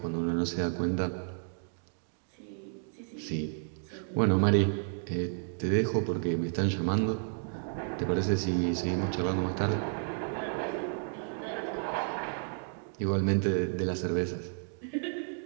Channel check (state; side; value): silent; left; 57 dB below the other